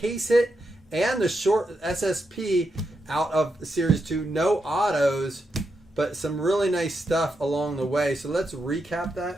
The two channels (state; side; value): normal; both; correlation 0.84